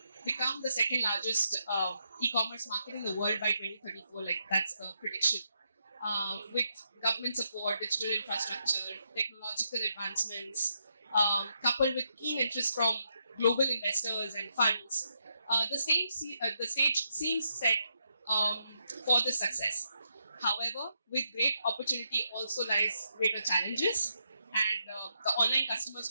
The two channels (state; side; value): inverted; both; correlation -0.80